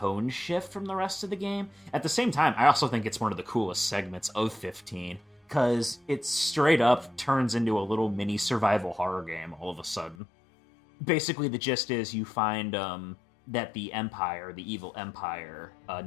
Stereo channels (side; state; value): right; drops out; at 10.2 s